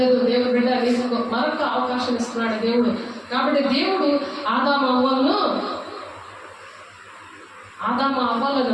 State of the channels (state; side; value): identical; both; correlation 1.00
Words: దేవుడు బిడ్డ నీకు మరొక అవకాశం ఇస్తున్నాడు దేవుడు. కాబట్టి దేవుడు ఆదాము అవ్వలను